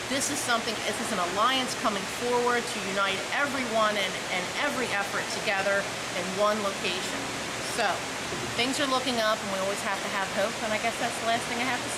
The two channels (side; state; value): both; identical; correlation 1.00